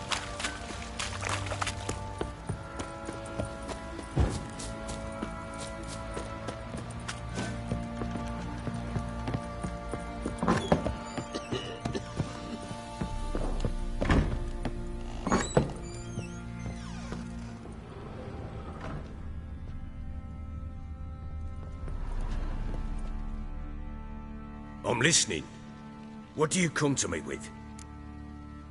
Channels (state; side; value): identical; both; correlation 1.00